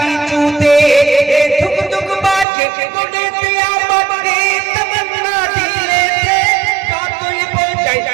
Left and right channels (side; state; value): left; drops out; at 2.5 s